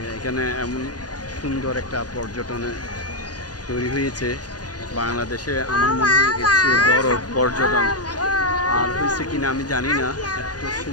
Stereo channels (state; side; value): late; right; 0.69 ms